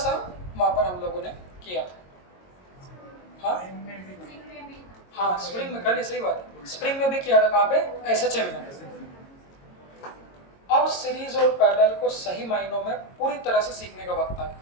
वहाँ पर हम लोगों ने किया था। हाँ हाँ, स्प्रिंग में कर लिया, सही बात है, स्प्रिंग में भी किया था। कहाँ पे? SHM में। अब सीरीज और पैरेलल को सही मायनों में पूरी तरह से सीखने का वक्त आ गया।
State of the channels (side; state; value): right; late; 22 ms